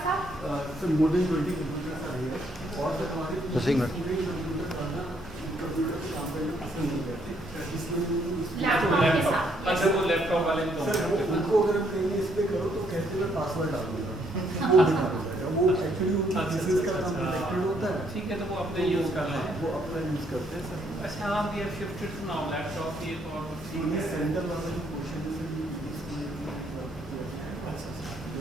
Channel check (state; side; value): normal; both; correlation 0.70